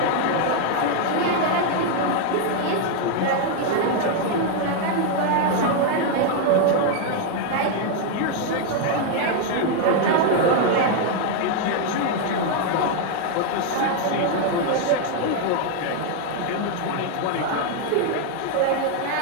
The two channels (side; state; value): both; different; correlation 0.01